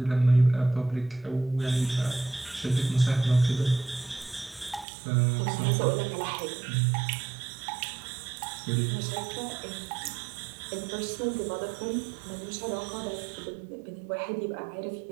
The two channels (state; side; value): drops out; left; at 4.9 s